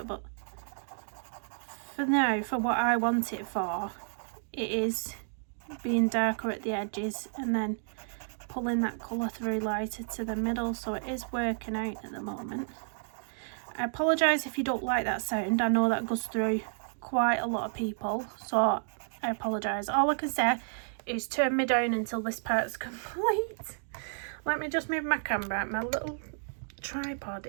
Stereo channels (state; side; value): silent; left; digital silence